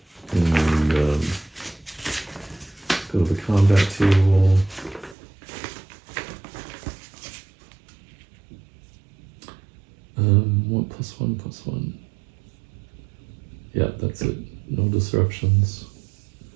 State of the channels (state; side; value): drops out; left; at 5.2 s